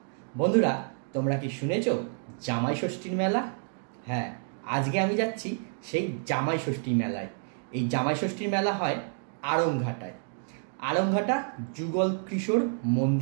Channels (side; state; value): left; silent; 59 dB below the other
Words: বন্ধুরা, তোমরা কি শুনেছো জামাই ষষ্ঠীর মেলা? হ্যাঁ, আজকে আমি যাচ্ছি সেই জামাই ষষ্ঠী মেলায়। এই জামাই ষষ্ঠীর মেলা হয় আড়ংঘাটায়। আড়ংঘাটা যুগল কিশোর